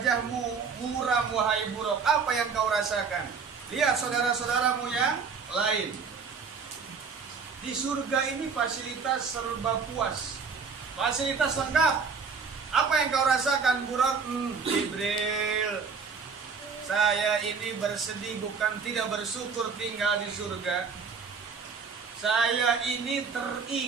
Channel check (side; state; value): left; quieter; 5.5 dB